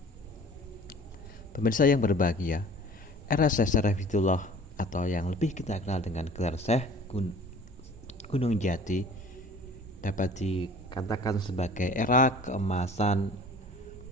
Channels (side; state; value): both; normal; correlation 0.47